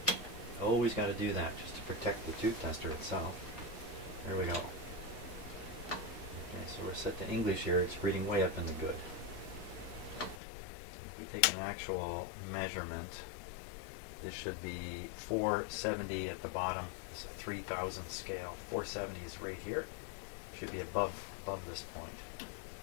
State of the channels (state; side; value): drops out; right; at 10.4 s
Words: Always got to do that just to protect the tube tester itself. There we go. Okay, so we're set to English here. It's reading way up in the good. If we take an actual measurement, this should be 470 at the bottom. It's a 3000 scale. 470 is right here. Should be above this point.